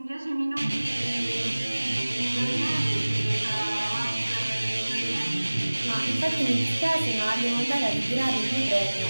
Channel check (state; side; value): inverted; both; correlation -1.00